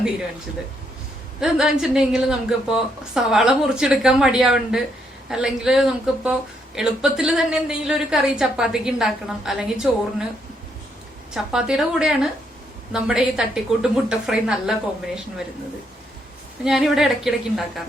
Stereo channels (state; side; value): normal; both; correlation 0.75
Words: തീരുമാനിച്ചത്. ഇതെന്താ വെച്ചിട്ടുണ്ടെങ്കിൽ നമുക്കിപ്പോ സവാള മുറിച്ചെടുക്കാൻ മടിയാവുണ്ട്, അല്ലെങ്കിൽ നമുക്കിപ്പോ എളുപ്പത്തിൽ തന്നെ എന്തെങ്കിലും ഒരു കറി ചപ്പാത്തിക്ക് ഉണ്ടാക്കണം, അല്ലെങ്കിൽ ചോറിന്. ചപ്പാത്തിയുടെ കൂടെയാണ് നമ്മുടെ ഈ തട്ടിക്കൂട്ട് മുട്ട ഫ്രൈ നല്ല കോമ്പിനേഷൻ വരുന്നത്. ഞാനിവിടെ ഇടയ്ക്കിടയ്ക്ക്